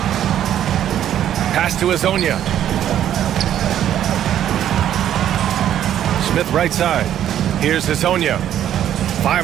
Pass to Hazonia. Smith right side. Here's Hazonia.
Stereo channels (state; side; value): quieter; left; 10.9 dB